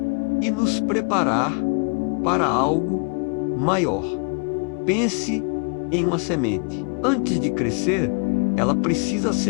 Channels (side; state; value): right; quieter; 37.2 dB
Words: e nos preparar para algo maior. Pense em uma semente. Antes de crescer, ela precisa